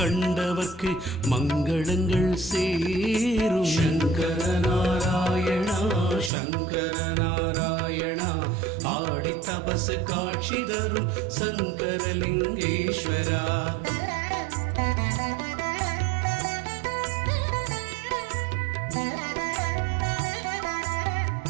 மங்களங்கள் சேரும். சங்கர நாராயணா சங்கர நாராயணா ஆடி தபசு காட்சி தரும் சங்கரலிங்கேஸ்வரா.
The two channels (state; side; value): drops out; left; at 6.3 s